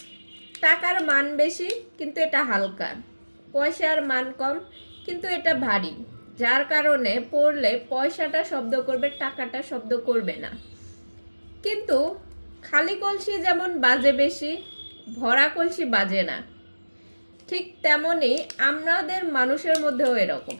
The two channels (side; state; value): both; inverted; correlation -1.00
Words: টাকার মান বেশি কিন্তু এটা হালকা, পয়সার মান কম কিন্তু এটা ভারী, যার কারণে পড়লে পয়সাটা শব্দ করবে, টাকাটা শব্দ করবে না। কিন্তু খালি কলসি যেমন বাজে বেশি, ভরা কলসি বাজে না, ঠিক তেমনই আমাদের মানুষের মধ্যেও এরকম।